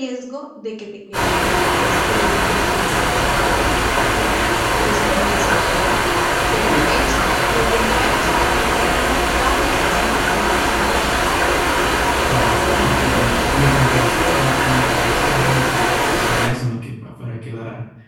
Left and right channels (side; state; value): both; identical; correlation 1.00